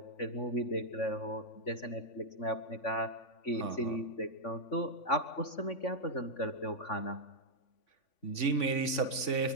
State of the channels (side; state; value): right; late; 3.5 ms